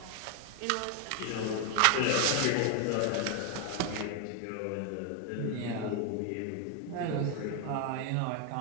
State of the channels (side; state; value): both; different; correlation 0.01